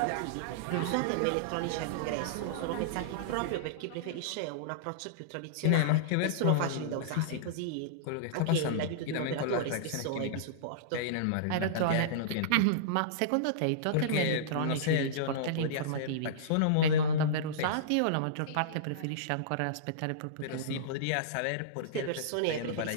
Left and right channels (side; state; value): both; different; correlation -0.03